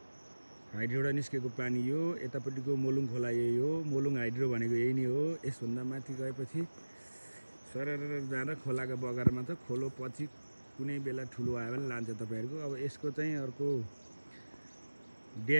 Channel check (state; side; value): inverted; both; correlation -1.00